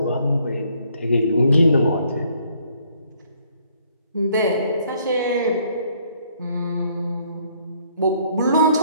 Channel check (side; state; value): both; inverted; correlation -0.66